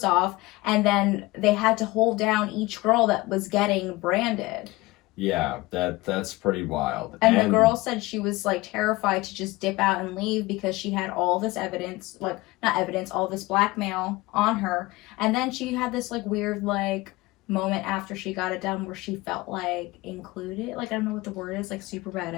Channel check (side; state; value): right; quieter; 20.8 dB